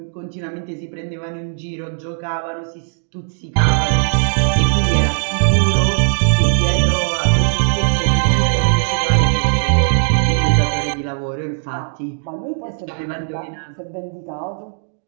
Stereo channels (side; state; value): left; silent; digital silence